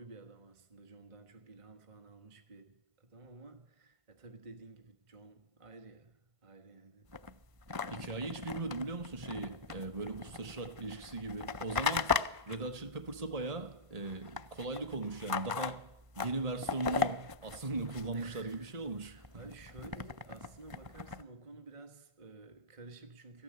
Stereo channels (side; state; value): left; late; 1.5 ms